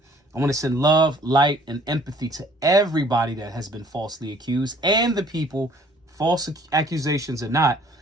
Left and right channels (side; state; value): both; normal; correlation 0.56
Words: I want to send love, light, and empathy to everybody that has been falsely accused and the people, false accusations or not,